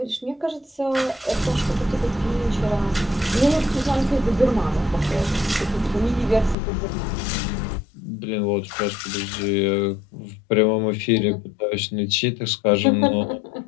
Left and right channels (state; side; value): drops out; right; at 6.6 s